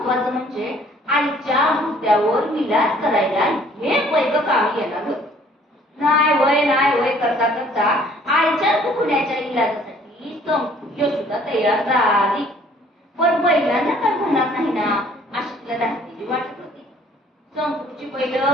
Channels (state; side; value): normal; both; correlation 0.57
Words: म्हणजे आईच्या मुद्द्यावर विलास करायला हे पैक कामी येणार होत. नाही वय करता करता आईच्या दुखण्याच्या इलाजासाठी संपूर्ण सुद्धा तयार झाली. पण बैलांना काय म्हणणार नाही ना अशी तिला धास्तीची वाटत होती. संपूची बैल